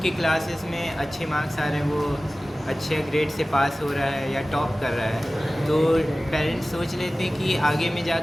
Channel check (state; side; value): normal; both; correlation 0.97